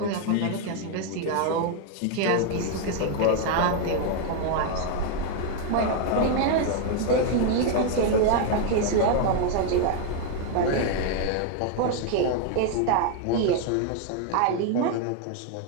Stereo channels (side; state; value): both; different; correlation 0.01